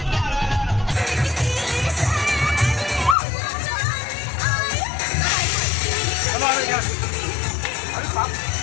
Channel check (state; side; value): drops out; right; at 3.2 s